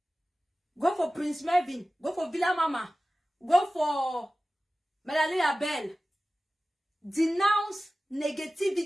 Go for Prince Mervin. Go for Villa Mama. Go for Melanie Abel. Denounce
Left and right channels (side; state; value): both; normal; correlation 0.96